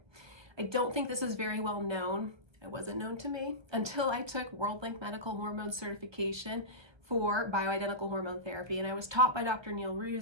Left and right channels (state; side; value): late; left; 1.3 ms